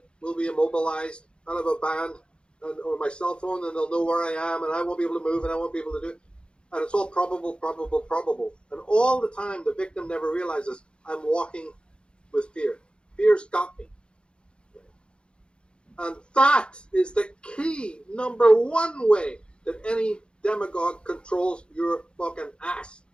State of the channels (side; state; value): right; late; 0.054 ms